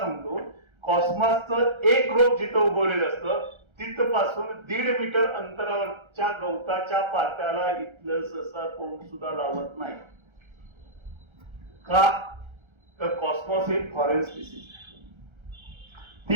कॉस्मॉसचं एक रोप जिथं उगवलेलं असतं तिथपासून 1.5 मीटर अंतरावरच्या गवताच्या पात्याला इथलं ससा कोण सुद्धा लावत नाही. का तर कॉस्मॉस हे फॉरेन स्पीसीज,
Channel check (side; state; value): left; late; 1.3 ms